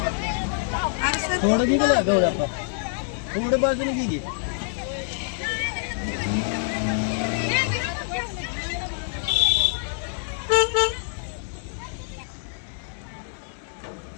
थोडं गेलं गवळ्या थोडं बाजूने गेली.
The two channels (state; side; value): silent; right; digital silence